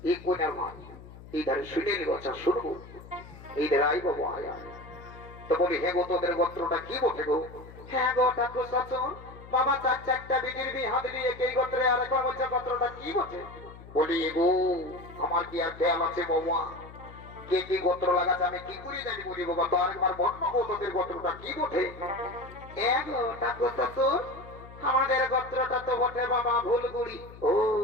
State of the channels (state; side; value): noise; left; hum, 17 dB below the sound